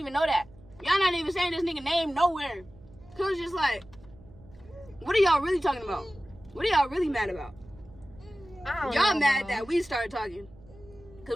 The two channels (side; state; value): right; noise; hum, 23 dB below the sound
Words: know that. Y'all not even saying this nigga name nowhere. Cause it's just like, what are y'all really talking about? What are y'all really mad about? Y'all mad that we started talking.